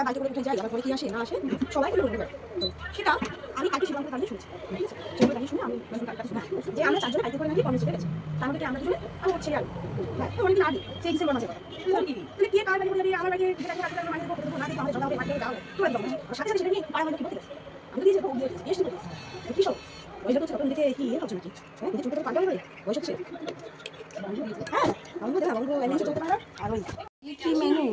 বাইকে করে উঠে যাই, আবার পরে কি আসে না আসে সবাই সেটা আমি কালকে শিবঙ্গের কারণে শুনছি। ঠিক আছে, সেগুলো কাহিনী শুনে আমি যে আমরা চারজনে বাইকে করে নাকি কর্মসূচিতে গেছি, তার মধ্যে আমরা দুজনে আমার ছেলে আর অনেকদিন আগে সেই ডিসেম্বর মাসে কথা। তাহলে কে কার বাড়ি বলে আমার বাড়ি মানে আমাদের জল বাড়ি দাও তোরা দাও সাথে সাথে সেটা নিয়ে পাড়া মানে কি বলতে গেছে। আমি তো দিয়েছি বেশ করে কি সব ওই জন্য তখন দিকে কি হচ্ছে নাকি নিজে চলতে পারবে বয়স হচ্ছে। হ্যাঁ বন্ধু দেখা বন্ধু এমনি চলতে পারো। আর ওই কি মেনু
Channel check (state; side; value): identical; both; correlation 1.00